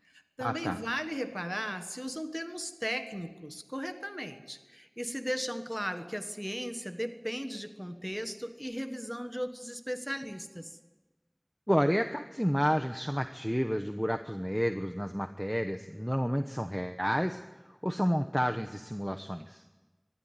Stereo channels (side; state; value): both; identical; correlation 1.00